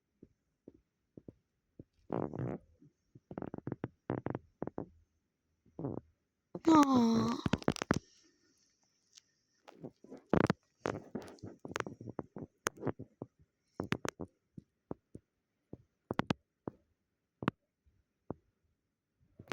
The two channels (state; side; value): identical; both; correlation 1.00